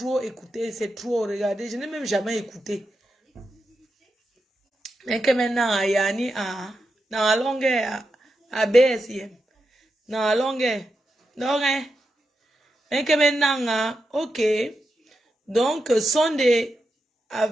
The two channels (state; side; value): normal; both; correlation 0.87